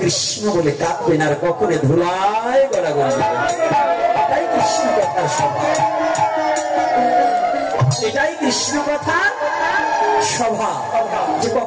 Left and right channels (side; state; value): both; identical; correlation 1.00